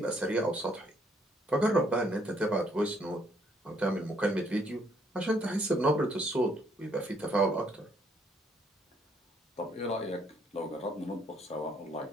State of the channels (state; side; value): normal; both; correlation 0.68